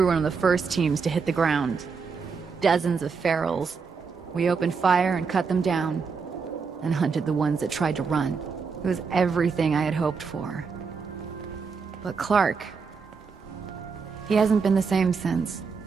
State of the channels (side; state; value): left; quieter; 5.3 dB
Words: one of the first teams to hit the ground. Dozens of ferals. We opened fire and cut them down, and hunted the ones that tried to run. It was everything I had hoped for. But Clark... he hasn't been the same since.